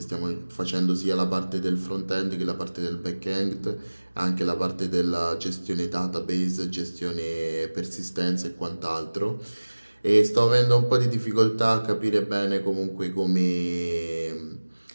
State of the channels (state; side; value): inverted; both; correlation -1.00